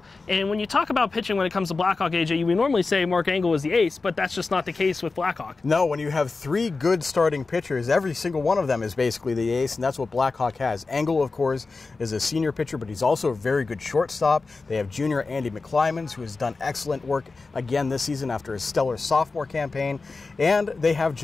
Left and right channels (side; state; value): right; quieter; 3.9 dB